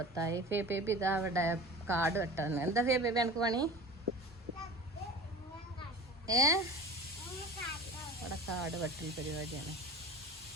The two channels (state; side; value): normal; both; correlation 0.37